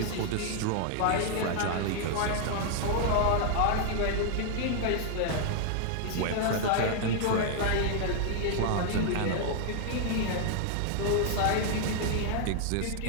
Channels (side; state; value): both; different; correlation 0.00